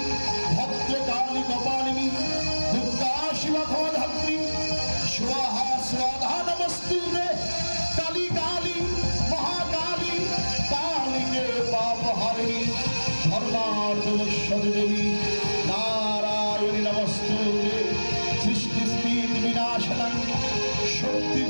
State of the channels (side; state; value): both; inverted; correlation -1.00